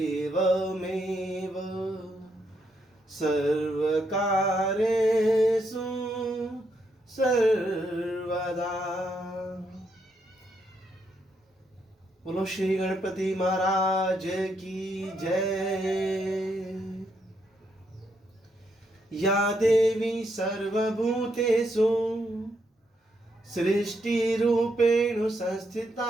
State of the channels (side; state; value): both; normal; correlation 0.77